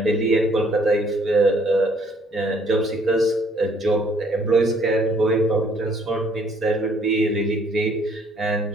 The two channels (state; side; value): normal; both; correlation 0.63